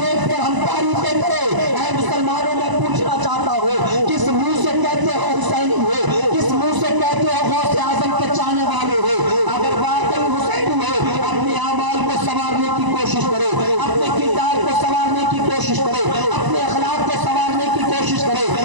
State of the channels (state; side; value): late; left; 1.0 ms